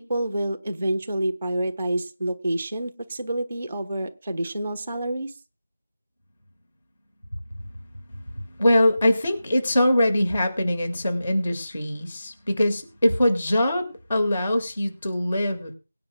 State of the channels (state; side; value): inverted; both; correlation -0.92